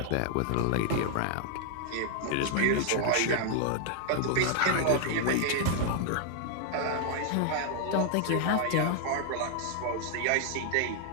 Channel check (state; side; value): different; both; correlation 0.00